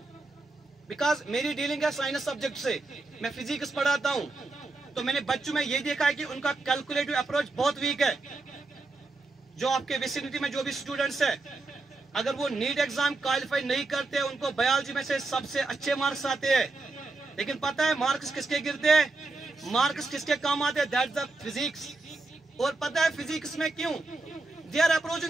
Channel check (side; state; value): left; quieter; 3.3 dB